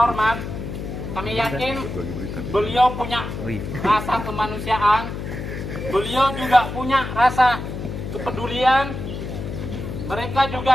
kami yakin beliau punya rasa kemanusiaan, beliau juga punya rasa kepedulian. Mereka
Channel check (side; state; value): left; noise; hum, 6 dB below the sound